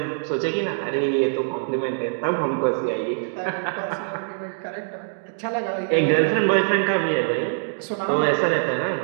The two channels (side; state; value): left; silent; digital silence